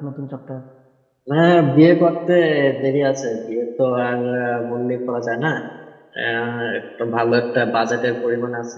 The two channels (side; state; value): both; identical; correlation 1.00